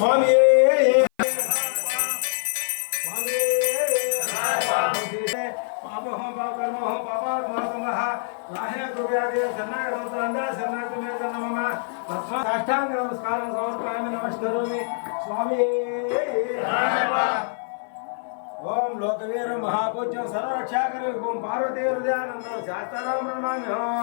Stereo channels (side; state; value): right; silent; 55 dB below the other